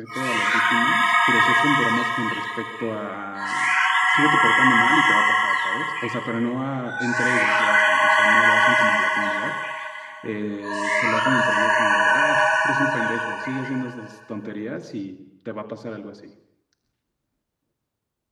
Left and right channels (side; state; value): both; identical; correlation 1.00